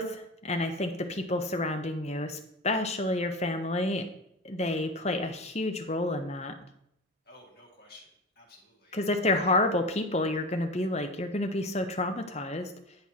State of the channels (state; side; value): normal; both; correlation 0.30